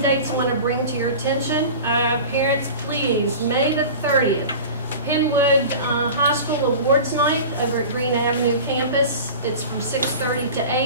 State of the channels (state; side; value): inverted; both; correlation -0.35